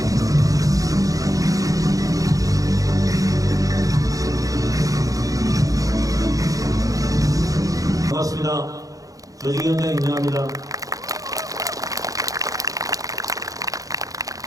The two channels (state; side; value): late; left; 0.17 ms